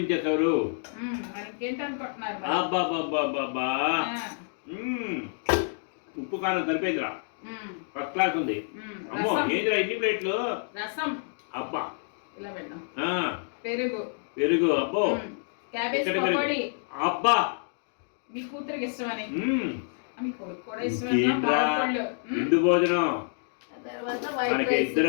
ఇంకేంటనుకుంటున్నారు? అబ్బా బాబా బాబా ఉప్పు కారం సరిపోయిందిరా, ఫస్ట్ క్లాస్ ఉంది. అమ్మో ఏందిరా ఇన్ని ప్లేట్లు? రసం. అబ్బా ఇలా పెట్టాం. పెరుగు. పెరుగు. అబ్బో క్యాబేజ్ పకోడీ. అబ్బా మీ కూతురికి ఇష్టమని, మీ కొడుకు కూడా ఇష్టం. ఇందు భోజనం. మనకి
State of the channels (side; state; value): right; silent; digital silence